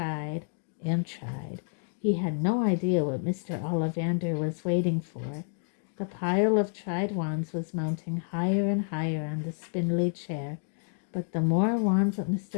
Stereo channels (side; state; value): right; silent; 57 dB below the other